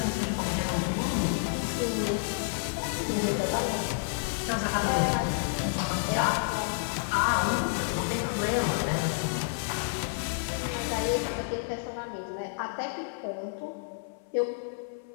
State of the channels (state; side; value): silent; right; 58 dB below the other